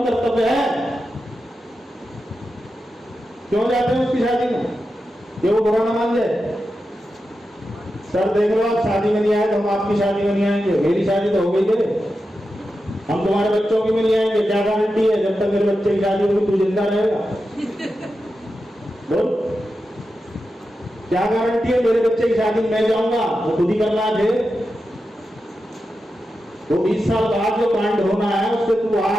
कर्तव्य है। क्यों जाते हैं उसकी शादी में? ये वो बुरा ना मान जाए। सर देख लो, आप शादी में नहीं आए तो हम आपकी शादी में नहीं आएंगे। मेरी शादी तो हो गई है, हम तुम्हारे बच्चों की में नहीं आएंगे। क्या गारंटी है जब तक मेरे बच्चे की शादी होगी तू जिंदा रहेगा? बोल, क्या गारंटी है मेरे बच्चे की शादी में मैं जाऊंगा? वो खुद ही करना है। वो 20 साल बाद जो कांड होना है उससे तू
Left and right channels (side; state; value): both; normal; correlation 0.90